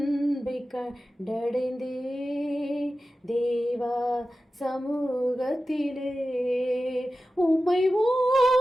கண்டடைந்தே தேவா சமூகத்திலே. உம்மை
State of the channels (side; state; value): both; normal; correlation 0.94